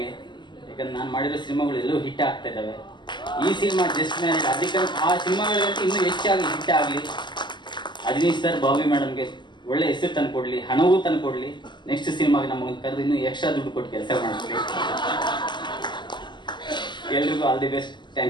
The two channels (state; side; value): late; right; 0.22 ms